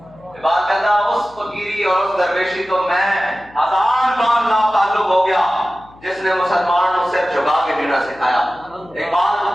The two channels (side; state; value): left; noise; hum, 25 dB below the sound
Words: بات کہتا ہے اس فقیری اور اس درویشی تو میں 1000 بار ناتعلق ہو گیا جس نے مسلمان کو صرف جھکا کے جینا سکھایا۔ ایک